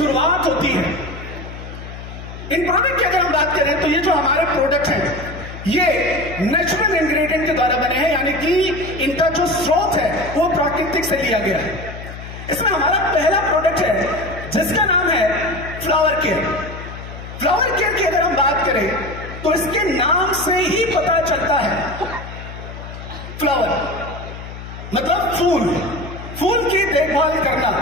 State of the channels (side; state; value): left; noise; hum, 12 dB below the sound